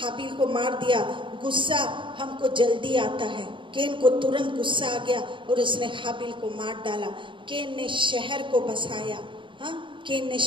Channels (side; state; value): left; late; 0.24 ms